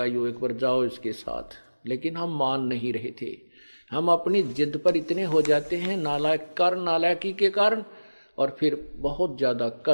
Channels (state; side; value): inverted; both; correlation -1.00